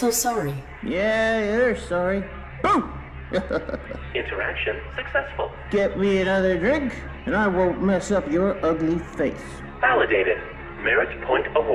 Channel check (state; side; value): identical; both; correlation 1.00